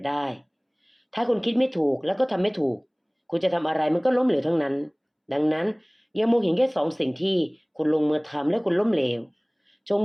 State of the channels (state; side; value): identical; both; correlation 1.00